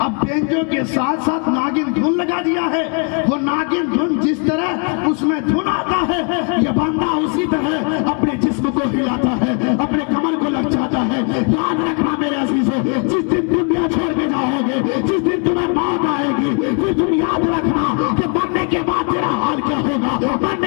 اب بینجو کے ساتھ ساتھ ناگن دھن لگا دیا ہے۔ وہ ناگن دھن جس طرح اس میں دھن آتا ہے، یہ بندہ اسی طرح اپنے جسم کو ہلاتا ہے، اپنے کمر کو لچاتا ہے۔ یاد رکھنا میرے عزیزوں، جس دن دنیا چھوڑ کے جاؤ گے، جس دن تمہیں موت آئے گی، پھر تم یاد رکھنا کہ مرنے کے بعد تیرا حال کیا ہوگا،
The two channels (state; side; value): quieter; right; 37.9 dB